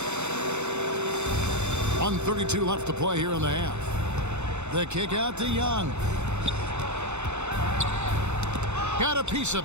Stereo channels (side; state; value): left; late; 0.82 ms